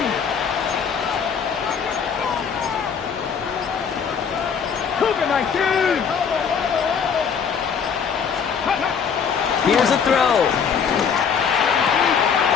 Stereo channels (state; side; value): quieter; right; 6.7 dB